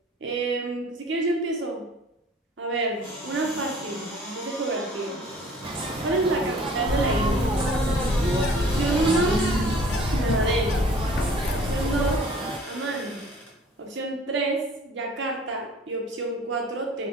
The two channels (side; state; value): both; normal; correlation 0.51